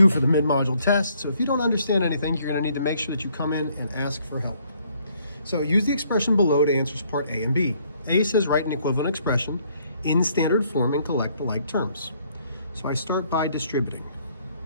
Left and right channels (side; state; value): both; inverted; correlation -0.66